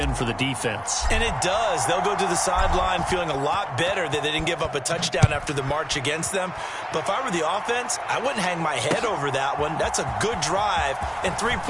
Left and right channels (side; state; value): both; identical; correlation 1.00